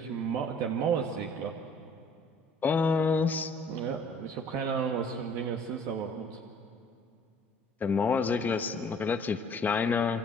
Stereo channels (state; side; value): normal; both; correlation 0.55